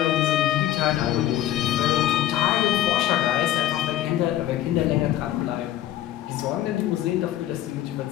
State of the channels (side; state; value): right; quieter; 12.8 dB